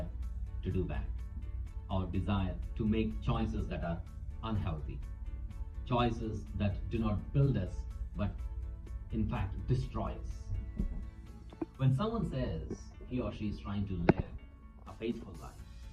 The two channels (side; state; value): both; identical; correlation 1.00